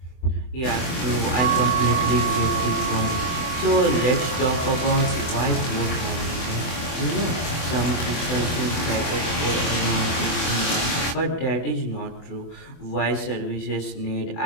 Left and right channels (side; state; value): right; late; 24 ms